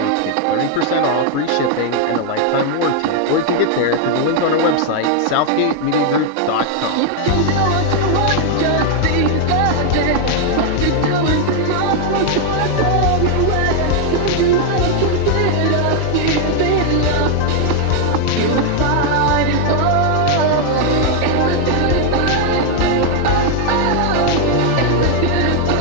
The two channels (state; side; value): different; both; correlation 0.00